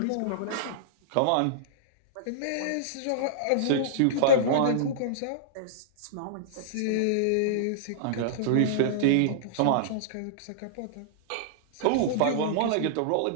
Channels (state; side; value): different; both; correlation -0.02